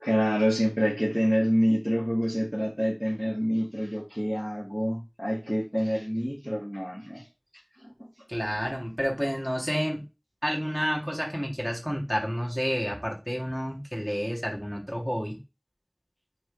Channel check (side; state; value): both; identical; correlation 1.00